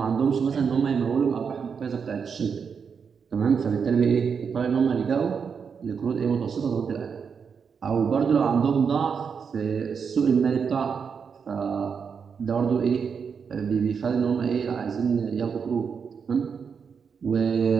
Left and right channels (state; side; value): quieter; left; 6.3 dB